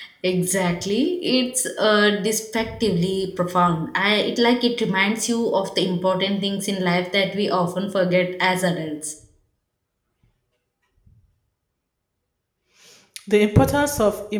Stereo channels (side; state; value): both; identical; correlation 1.00